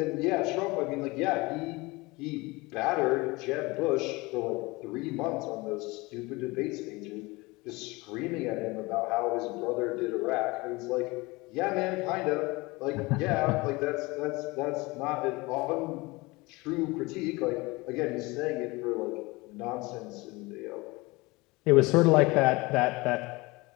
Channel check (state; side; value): quieter; right; 23.5 dB